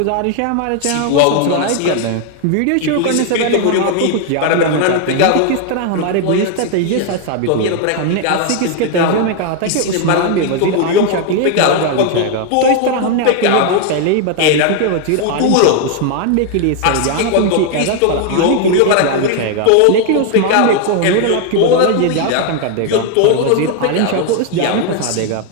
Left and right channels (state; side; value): different; both; correlation 0.00